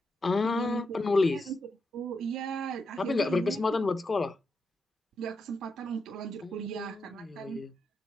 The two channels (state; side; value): normal; both; correlation 0.84